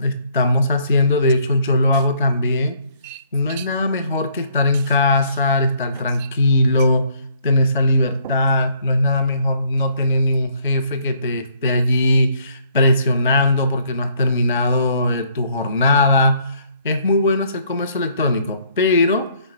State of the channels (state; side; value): inverted; both; correlation -0.64